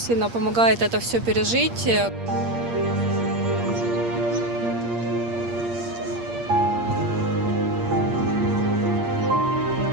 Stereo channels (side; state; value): left; late; 8.6 ms